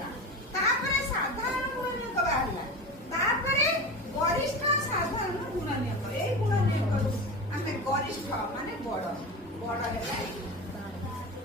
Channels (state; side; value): normal; both; correlation 0.27